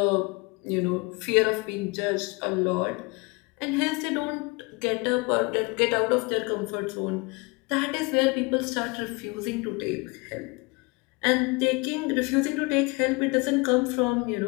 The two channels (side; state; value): right; quieter; 27.6 dB